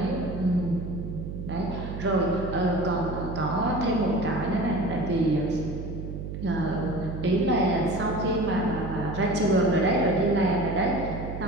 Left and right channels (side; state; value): right; noise; hum, 7 dB below the sound